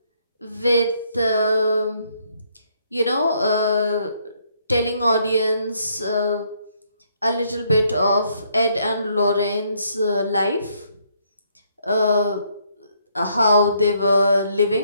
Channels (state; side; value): inverted; both; correlation -0.71